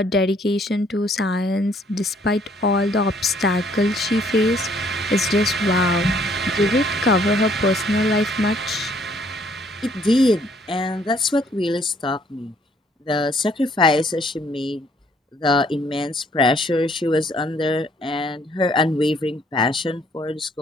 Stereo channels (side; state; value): both; normal; correlation 0.64